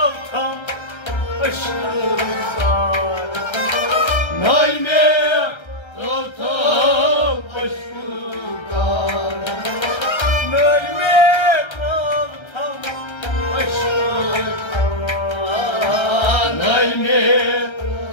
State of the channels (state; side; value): late; right; 1.3 ms